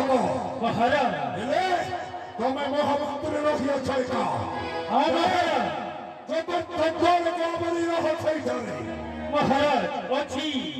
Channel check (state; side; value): identical; both; correlation 1.00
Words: ମହାରାଜ ହେଲେ ତମେ ମହାମନ୍ତ୍ରୀ ରହିଅଛ ଏକା। ମହାରାଜ ଚତୁର୍ଥ ଦ୍ୱାରକୁ ଆମରି ରହ ସେଇଠାରେ। ମହାରାଜ ଅଛି